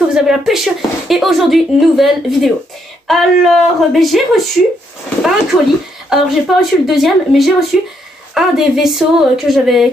vous avez la pêche. Et aujourd'hui, nouvelle vidéo. Alors, j'ai reçu un colis. Alors, j'ai pas reçu le deuxième, mais j'ai reçu un des vaisseaux que j'avais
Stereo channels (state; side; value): normal; both; correlation 0.75